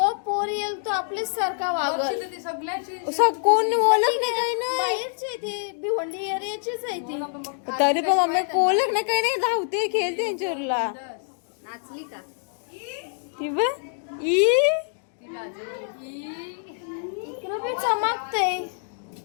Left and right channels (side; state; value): right; silent; digital silence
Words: पोर येईल तो आपल्याच सारखा वागत. कोण ओळख नाही काही नाही. बाहेरचे ते भिवंडी एरियाचीच आहे ती. तरी पण मम्मी ओळख नाही काही नाही. धावते खेळते त्यांच्यावरला. नाचली का ती बघ ई इकडे बी चमकते.